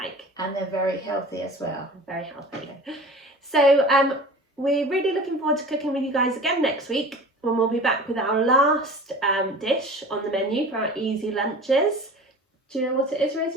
And they're very healthy as well. Very healthy. So we're really looking forward to cooking with you guys again next week, when we'll be back with our last dish on the menu for our easy lunches. Do you know what it is,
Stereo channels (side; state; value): both; normal; correlation 0.39